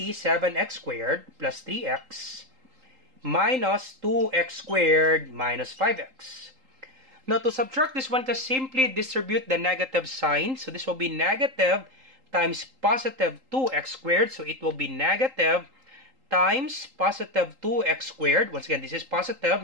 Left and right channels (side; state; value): left; late; 3.8 ms